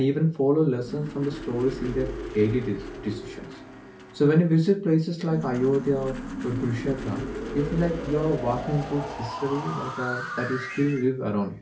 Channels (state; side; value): identical; both; correlation 1.00